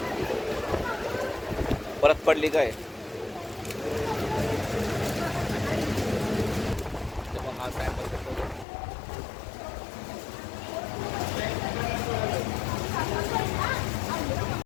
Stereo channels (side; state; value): right; drops out; at 8.7 s